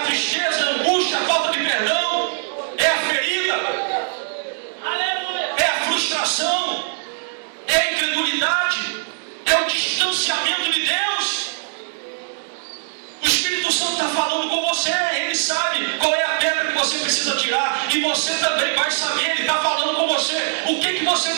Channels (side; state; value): left; silent; digital silence